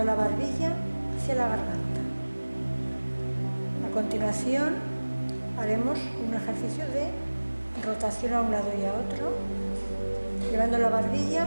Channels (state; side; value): inverted; both; correlation -1.00